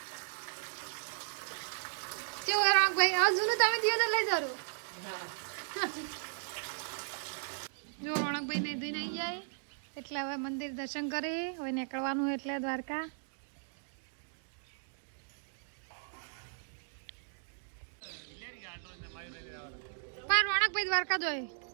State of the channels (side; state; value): left; silent; digital silence